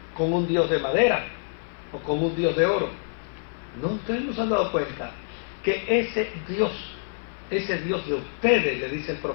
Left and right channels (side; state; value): right; silent; 55 dB below the other